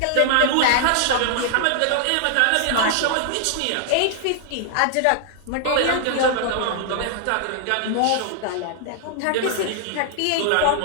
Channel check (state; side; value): different; both; correlation -0.01